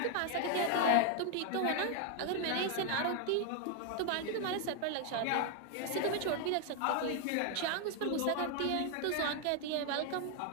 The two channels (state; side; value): different; both; correlation 0.01